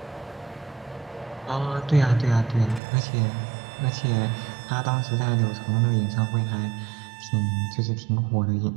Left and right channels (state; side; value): drops out; left; at 2.8 s